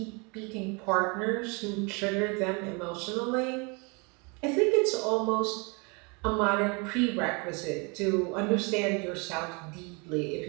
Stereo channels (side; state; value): left; quieter; 30.8 dB